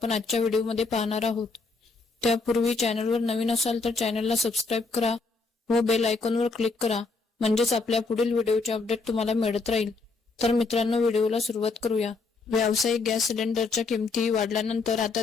आजच्या व्हिडिओमध्ये पाहणार आहोत। त्यापूर्वी चॅनलवर नवीन असाल तर चॅनलला सबस्क्राइब करा व बेल आयकॉनवर क्लिक करा, म्हणजेच आपल्या पुढील व्हिडिओचे अपडेट तुम्हाला मिळत राहील। तर मित्रांनो, व्हिडिओला सुरुवात करूया। व्यावसायिक गॅस सिलेंडरच्या किमती वाढल्यानंतर आता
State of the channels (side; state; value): right; quieter; 3.9 dB